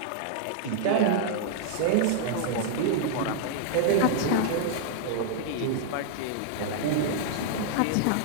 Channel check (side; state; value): both; different; correlation -0.01